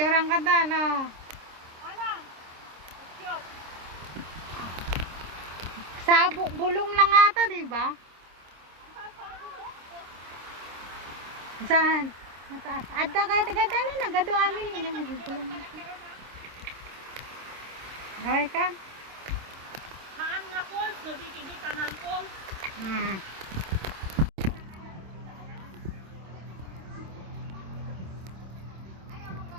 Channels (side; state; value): left; late; 26 ms